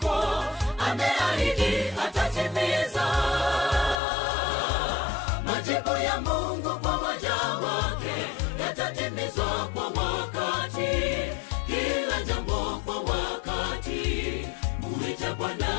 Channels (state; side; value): drops out; right; at 4.0 s